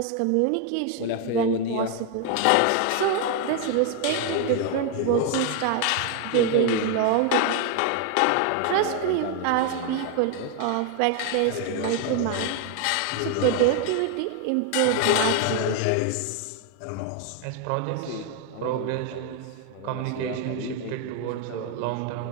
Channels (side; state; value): both; different; correlation 0.01